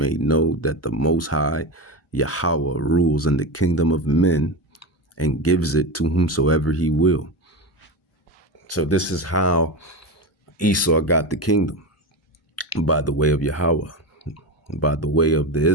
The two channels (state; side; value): normal; both; correlation 0.20